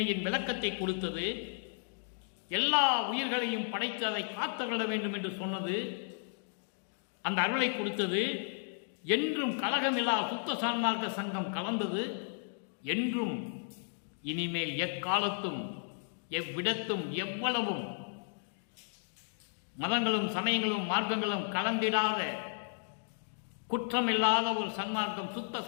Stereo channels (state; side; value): silent; right; digital silence